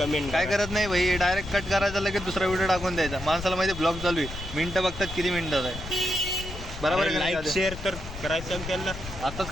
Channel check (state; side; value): noise; left; rumble, 10 dB below the sound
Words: काय करत नाही भाई, डायरेक्ट कट करायचा, लगेच दुसरा व्हिडिओ टाकून द्यायचा. माणसाला माहिती ब्लॉग चालू आहे, मिनटं बघतात किती मिनिटात आहे. बरोबर आहे का नाही? लाईक शेअर तर करायचं त्यांना. आताच